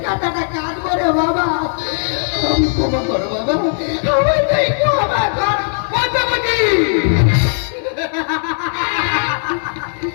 কাটাটা কাঁদবো রে বাবা। ক্ষমা করো বাবা, আমার একটু আমার ঘর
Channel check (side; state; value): right; silent; 68 dB below the other